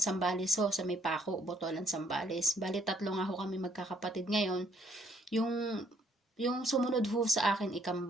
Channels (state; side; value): normal; both; correlation 0.66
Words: Zambales ho, sa may Paco, Botolan, Zambales. Bali, 3 nga ho kami magkakapatid ngayon. Yung sumunod ho sa akin,